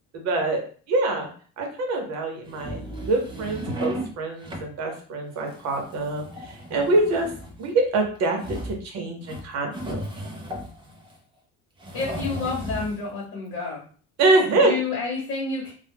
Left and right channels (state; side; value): normal; both; correlation 0.14